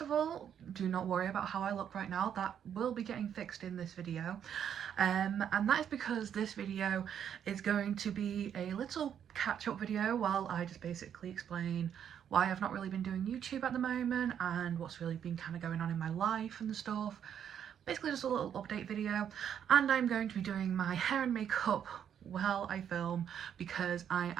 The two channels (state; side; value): quieter; left; 8.9 dB